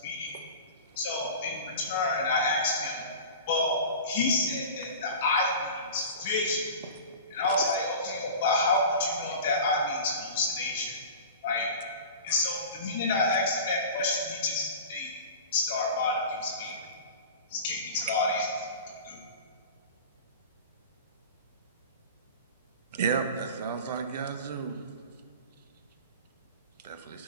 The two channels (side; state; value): both; inverted; correlation -0.35